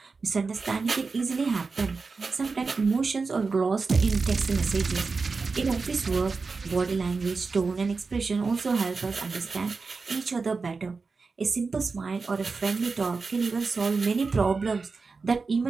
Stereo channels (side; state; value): left; quieter; 4.4 dB